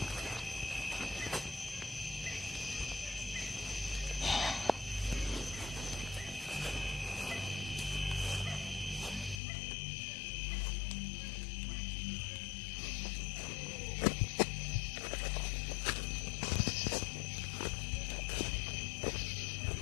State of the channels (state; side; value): drops out; right; at 9.4 s